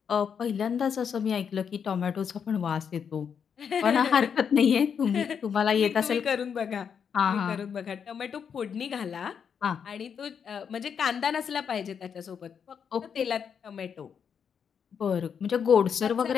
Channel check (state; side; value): quieter; right; 7.2 dB